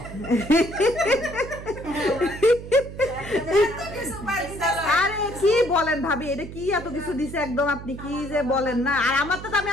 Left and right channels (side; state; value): right; noise; hum, 12 dB below the sound